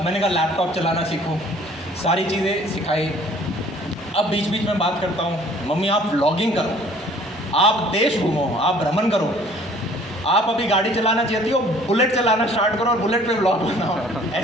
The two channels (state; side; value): normal; both; correlation 0.54